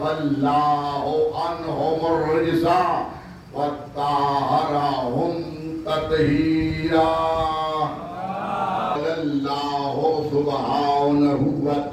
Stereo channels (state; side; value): identical; both; correlation 1.00